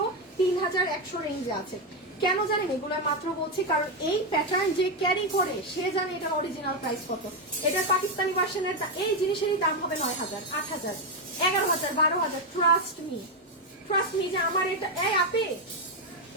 3100 রেঞ্জে আছে, কেন জানেন এগুলো মাত্র বলছি কারণ এই প্যাটার্ন যে ক্যারি করে সে জানে এটা অরিজিনাল প্রাইস কত। এটার পাকিস্তানি ভার্সনের এই জিনিসেরই দাম হবে 9000, 8000, 11000, 12000। ট্রাস্ট মি যে আমার এটা এই আপি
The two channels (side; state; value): both; normal; correlation 0.05